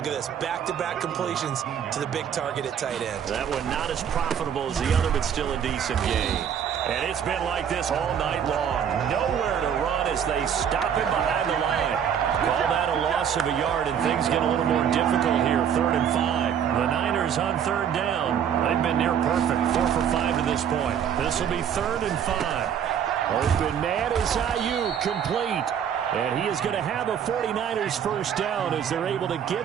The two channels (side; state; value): left; quieter; 8.5 dB